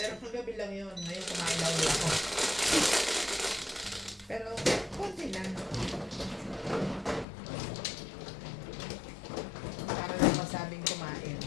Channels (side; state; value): right; drops out; at 7.2 s